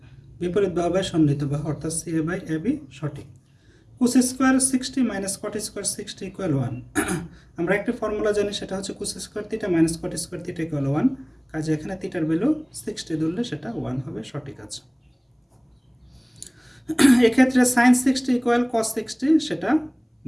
বিপরীত বাহু বাই সন্নিহিত বাহু অর্থাৎ CA বাই AB সঠিক। cos square 60 minus cot square 60 equal 1। আমরা একটা ফর্মুলা জানি, সেটা হচ্ছে cos square theta minus cot square theta equal 1, কাজে এখানে থিটার ভ্যালু 60 ধরলে সেটা 1 হবে, সঠিক আছে। এক্ষেত্রে sin 60 ইকুয়াল cos 60 সেটা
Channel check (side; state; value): both; identical; correlation 1.00